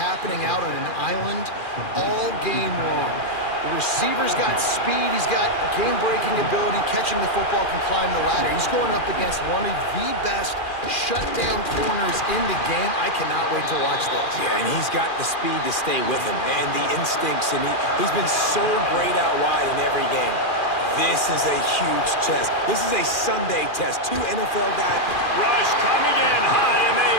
out on an island all game long. The receiver's got speed, he's got game-breaking ability, catching the football, can climb the ladder. He's going up against one of the best shutdown corners in the game. I cannot wait to watch this. Yeah, and he's got the speed to stay with him and the instincts, and he's been so great out wide in every game. This is a huge test. This is a Sunday test. 2 NFL guys. Rush coming in high, and they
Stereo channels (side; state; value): right; late; 2.4 ms